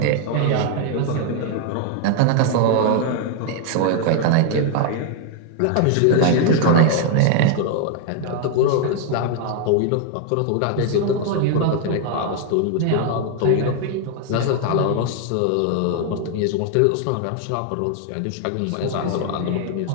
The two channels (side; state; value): both; different; correlation 0.00